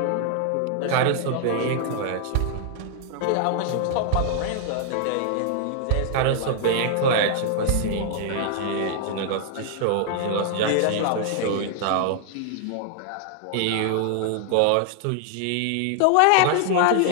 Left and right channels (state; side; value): different; both; correlation 0.00